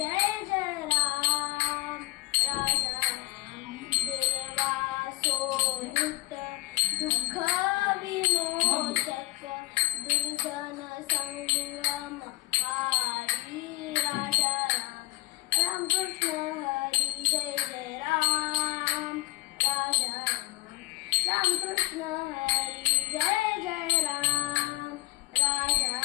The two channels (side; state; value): right; quieter; 17.0 dB